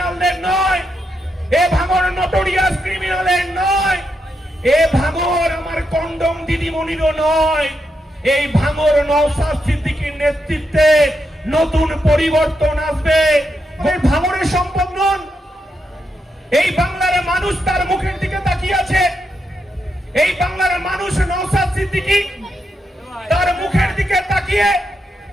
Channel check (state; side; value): normal; both; correlation 0.83